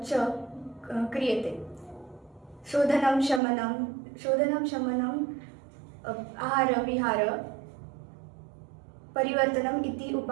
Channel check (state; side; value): drops out; left; at 3.4 s